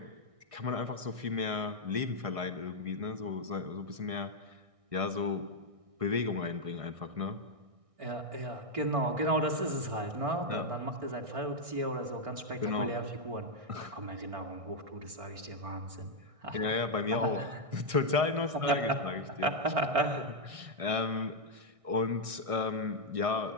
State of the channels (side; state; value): left; late; 1.6 ms